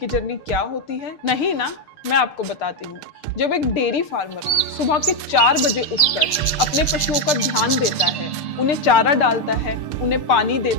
जर्नी क्या होती है? नहीं ना, मैं आपको बताती हूँ। जब एक डेयरी फार्मर सुबह के 4 बजे उठकर अपने पशुओं का ध्यान देता है, उन्हें चारा डालता है, उन्हें पानी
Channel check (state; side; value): late; right; 6.7 ms